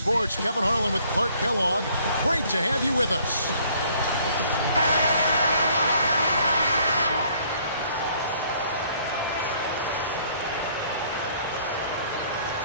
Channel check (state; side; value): inverted; both; correlation -0.61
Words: Kevin Harlan with Clark Kellogg. Great to have you with us.